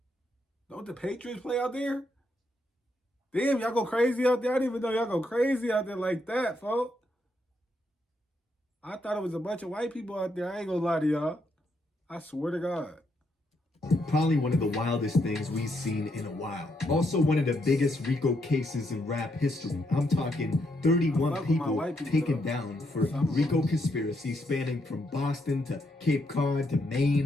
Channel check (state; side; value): normal; both; correlation 0.77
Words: Don't the Patriots play out there? Damn, y'all go crazy out there. I didn't even know y'all go crazy out there like that, folks. I thought it was a bunch of white people out there. I ain't gonna lie to y'all. I swear to God. Probably one of the wildest things we've seen in a while. Also one of the biggest RICO cases in rap history. I'm talking 31 people taken down for RICO conspiracy spanning from Boston to Cape Cod to